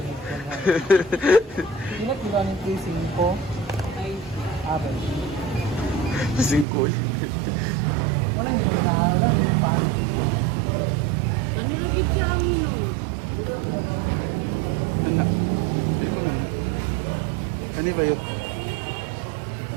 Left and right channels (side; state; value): left; drops out; at 6.7 s